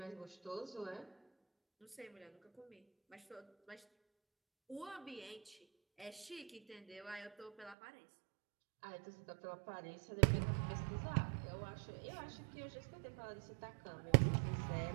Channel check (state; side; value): drops out; left; at 7.8 s